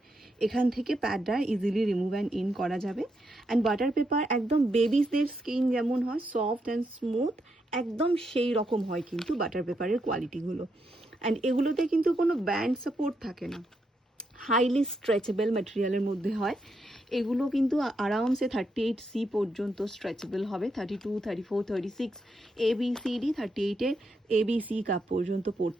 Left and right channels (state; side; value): normal; both; correlation 0.81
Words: এখান থেকে প্যাডটা ইজিলি রিমুভ অ্যান্ড ইন করা যাবে। অ্যান্ড বাটার পেপার একদম বেবিসদের স্কিন যেমন হয় সফট অ্যান্ড স্মুথ, একদম সেই রকম হয় কিন্তু বাটার পেপারের কোয়ালিটিগুলো। অ্যান্ড এগুলোতে কিন্তু কোনো ব্যান্ড সাপোর্ট থাকে না, হাইলি স্ট্রেচেবল ম্যাটেরিয়ালের মধ্যে হয়। এগুলো কিন্তু আরামসে 38C পর্যন্ত স্ট্রেচেবল হবে, 32, 34, 36 ABCD 38-এর ABC কাপ পর্যন্ত